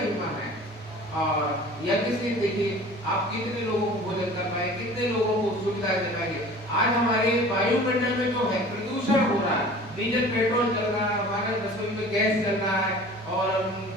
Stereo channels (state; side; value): normal; both; correlation 0.43